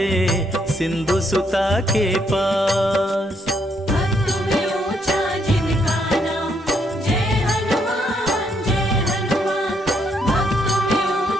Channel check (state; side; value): normal; both; correlation 0.73